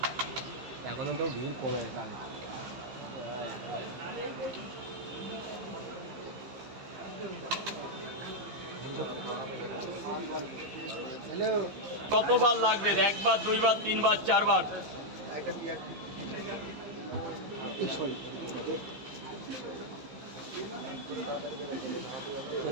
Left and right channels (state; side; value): late; left; 15 ms